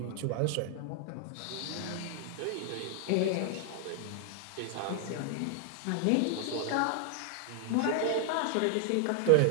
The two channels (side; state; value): both; different; correlation 0.00